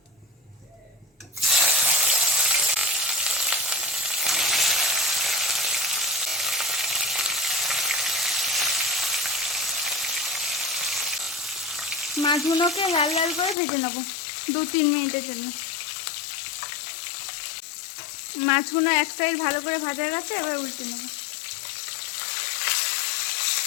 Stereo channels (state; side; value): drops out; right; at 13.6 s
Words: মাছগুলোকে লাল লাল করে ভেজে নেব 2-3 মিনিটের জন্য। মাছগুলো এক সাইড ভালো করে ভাজা গেছে। এবার উল্টে নেব।